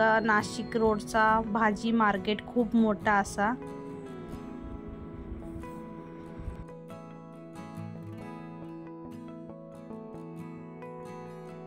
नाशिक रोडचा भाजी मार्केट, खूप मोठा असा।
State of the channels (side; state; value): both; identical; correlation 1.00